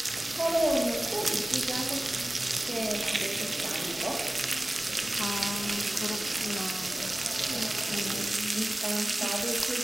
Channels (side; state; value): both; normal; correlation 0.97